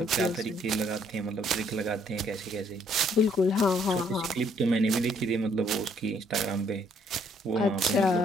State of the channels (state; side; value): normal; both; correlation 0.66